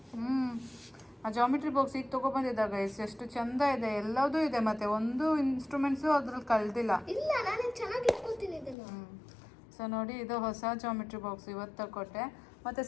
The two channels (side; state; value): right; drops out; at 8.8 s